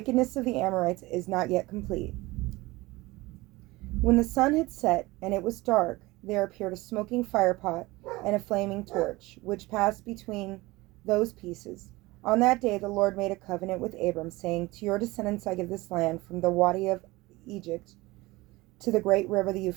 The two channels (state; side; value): quieter; left; 21.0 dB